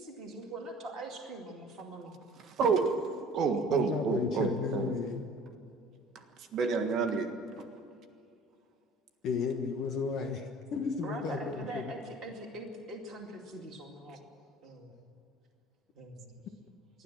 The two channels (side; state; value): both; normal; correlation 0.48